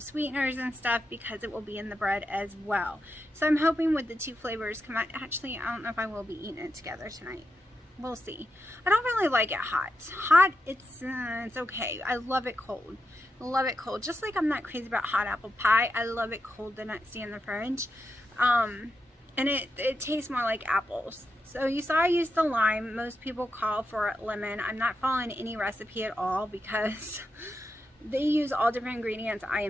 sweeteners and stuff, because it will be in the bread as well. So I'm hoping with the two flavors come out. Actually, I don't know if I will be eating it together tonight. We'll see. I don't really like it hot. Hot, it's okay. I love it cold. Love it cold. Just like I'm not crazy about hot apple pie, I love it cold the next day in the fridge. And it tastes more like apples. So you saw I used the lime. Most people call for lemon. I'm not following any recipe at all because they use all different ingredients. I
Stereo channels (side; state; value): both; normal; correlation 0.86